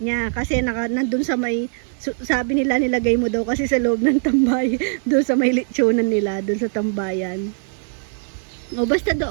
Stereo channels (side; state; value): left; silent; digital silence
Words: Kasi nandun sa may, sabi nila nilagay mo daw kasi sa loob ng tambay. Dun sa may litsunan nila, dun sa tambayan. O basta